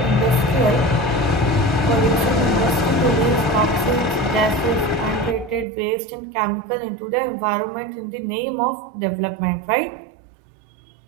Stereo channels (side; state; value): left; drops out; at 5.7 s